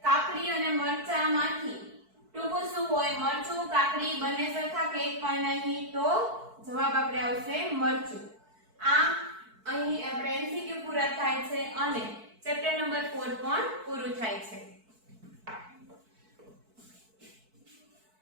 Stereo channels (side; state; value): left; late; 4.6 ms